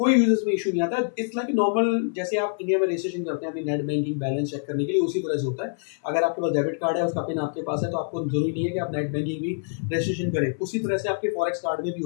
यूज़र्स में इश्यू नहीं आता। इट्स लाइक नॉर्मल, जैसे आप इंडिया में रजिस्ट्रेशन करते हैं अपनी नेट बैंकिंग बैलेंस चेक करने के लिए, उसी तरह से होता है। अगर आपके पास डेबिट कार्ड है, उसका पिन आपके पास है, तो आपको ज़रूरी नहीं है कि आप नेट बैंकिंग भी रजिस्ट्रेशन करें। उसी तरह से आपके फॉरेक्स कार्ड में भी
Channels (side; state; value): right; silent; 58 dB below the other